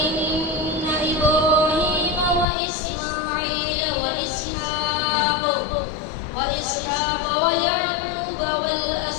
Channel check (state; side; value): drops out; right; at 2.5 s